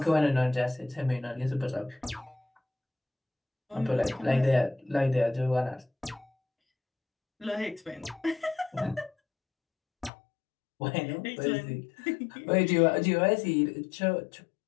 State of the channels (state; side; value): drops out; right; at 10.1 s